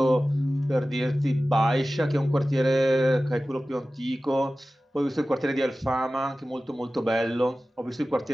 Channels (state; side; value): normal; both; correlation 0.96